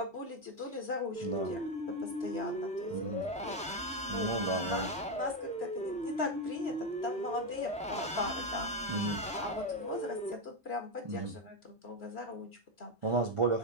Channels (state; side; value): normal; both; correlation 0.08